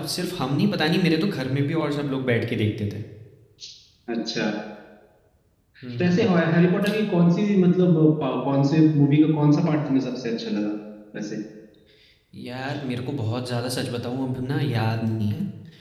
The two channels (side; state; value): both; identical; correlation 1.00